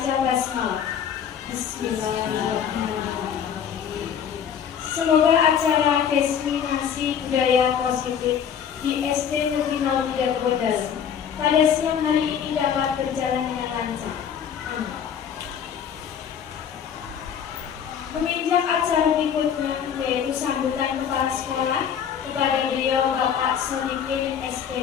basmalah. Bismillahirrahmanirrahim. Semoga acara diseminasi budaya positif di SD Negeri 03 Kebonali pada siang hari ini dapat berjalan dengan lancar. Amin. Menginjak acara berikutnya, yaitu sambutan Kepala Sekolah, kepada beliau Bapak Sodikin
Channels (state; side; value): quieter; right; 8.2 dB